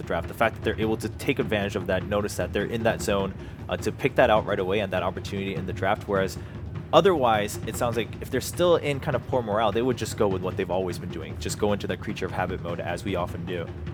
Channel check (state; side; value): identical; both; correlation 1.00